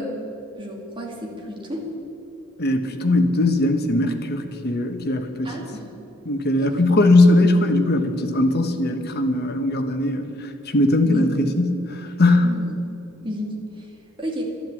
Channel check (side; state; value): both; normal; correlation 0.73